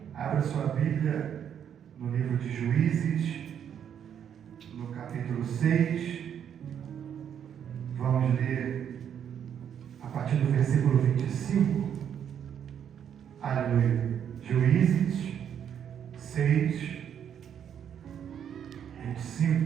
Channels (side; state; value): left; quieter; 8.8 dB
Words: Abra sua Bíblia no livro de Juízes, no capítulo 6. Vamos ler a partir do versículo 25. Aleluia. Juízes 6,